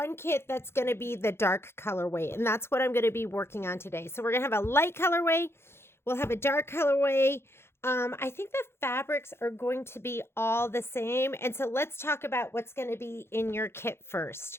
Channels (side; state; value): right; late; 0.12 ms